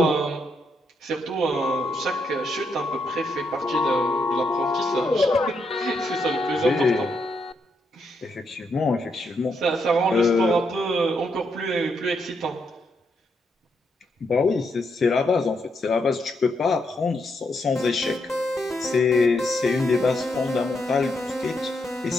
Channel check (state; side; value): normal; both; correlation 0.79